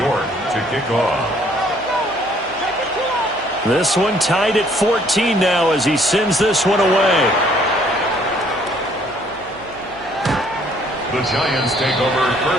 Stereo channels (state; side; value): noise; right; hum, 26 dB below the sound